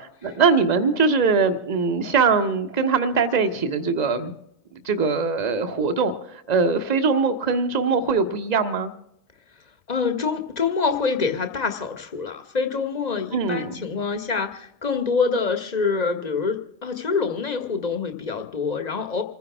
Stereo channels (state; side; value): late; right; 1.9 ms